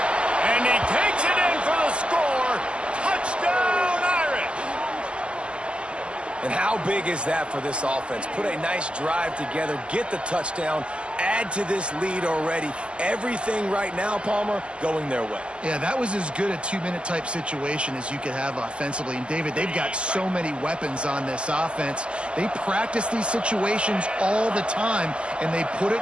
And he takes it in for the score. Touchdown, Irish! And how big is that for this offense? Put a nice drive together, get the touchdown, add to this lead already. Everything right now, Palmer, going their way. Yeah, that was as good a 2-minute type situation as you could have offensively. And, David, they've got so many weapons on this offense. They practice these situations all the time, and they put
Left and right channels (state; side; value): late; left; 0.052 ms